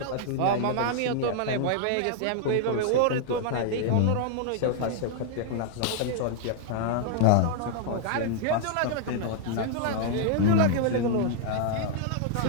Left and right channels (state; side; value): different; both; correlation -0.01